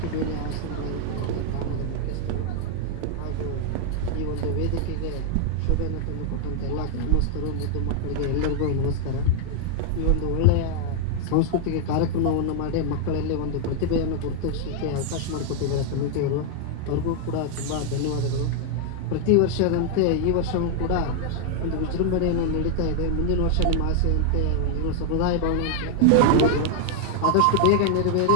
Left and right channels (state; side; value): different; both; correlation 0.00